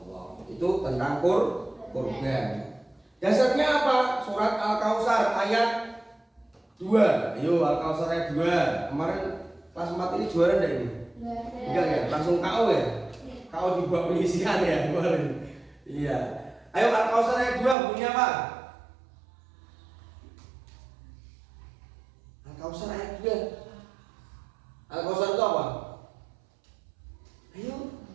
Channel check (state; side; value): drops out; left; at 17.8 s